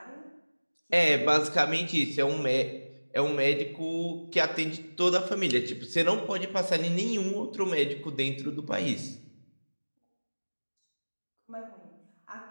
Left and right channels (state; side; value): inverted; both; correlation -1.00